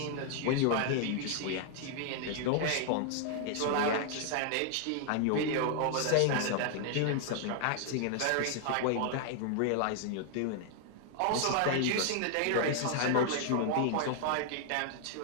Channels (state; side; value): different; both; correlation 0.00